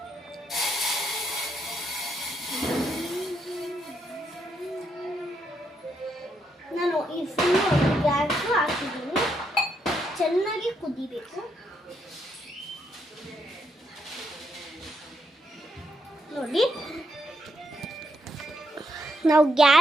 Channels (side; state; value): both; normal; correlation 0.78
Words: ನಾನು ಈ ಫುಲ್ಲು ಗ್ಯಾಸು ಹಾಕಿದ್ದೀನಿ. ಚೆನ್ನಾಗಿ ಕುದಿಬೇಕು ನೋಡಿ. ನಾವು